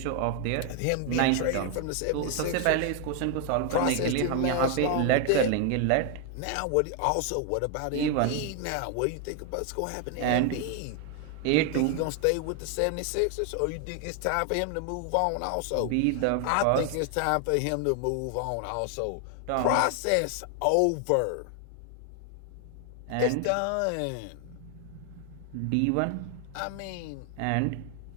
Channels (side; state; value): both; different; correlation 0.00